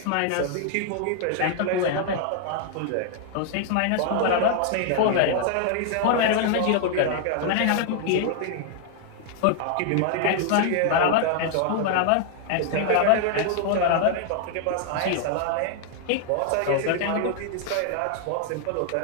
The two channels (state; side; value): different; both; correlation 0.00